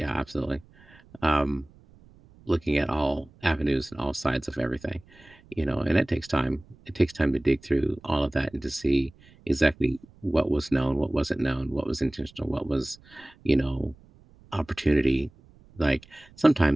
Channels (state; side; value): noise; right; rumble, 26 dB below the sound